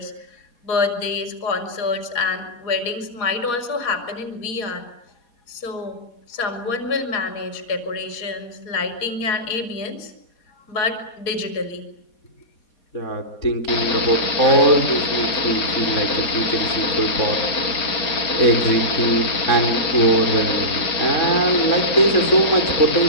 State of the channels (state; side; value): late; right; 4.2 ms